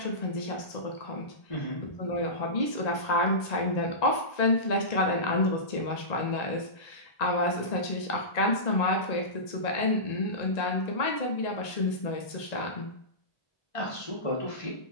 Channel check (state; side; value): late; right; 1.8 ms